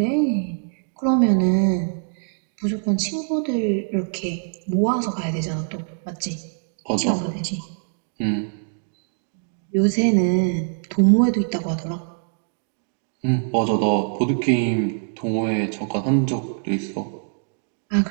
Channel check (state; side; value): silent; left; digital silence